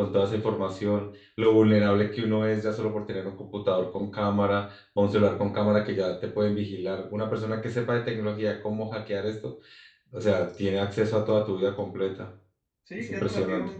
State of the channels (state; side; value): identical; both; correlation 1.00